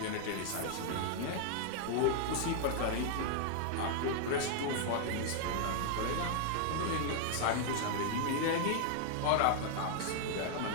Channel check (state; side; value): different; both; correlation 0.00